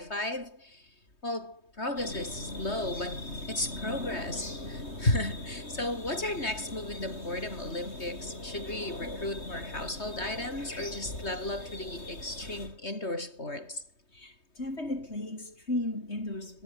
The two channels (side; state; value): right; late; 3.2 ms